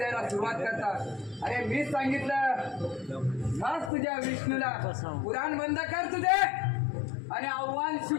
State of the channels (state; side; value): drops out; right; at 3.9 s